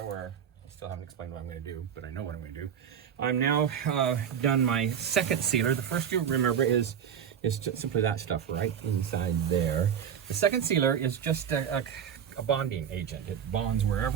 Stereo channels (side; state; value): left; quieter; 8.4 dB